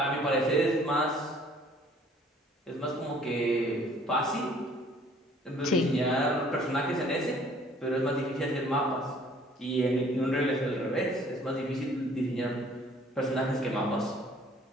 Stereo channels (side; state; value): both; normal; correlation 0.56